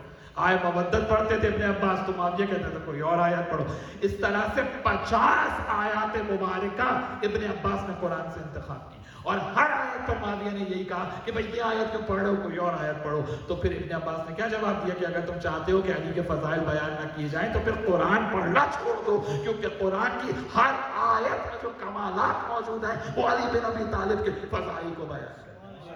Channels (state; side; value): identical; both; correlation 1.00